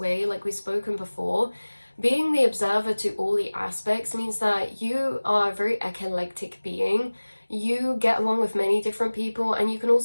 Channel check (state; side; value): inverted; both; correlation -1.00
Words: like we've spoken before, being the observer to all the aspects means that you are a very eclectic being. You get along with many different people, and you can